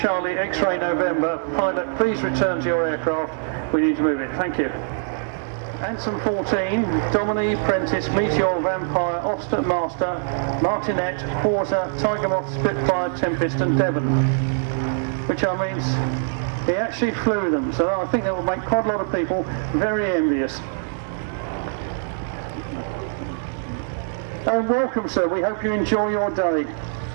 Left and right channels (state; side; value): silent; left; digital silence